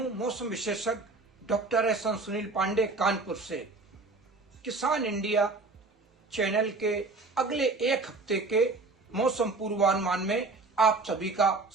मौसम विशेषज्ञ डॉक्टर एस सुनील पांडे कानपुर से। किसान इंडिया चैनल के अगले एक हफ्ते के मौसम पूर्वानुमान में आप सभी का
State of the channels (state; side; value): quieter; left; 3.6 dB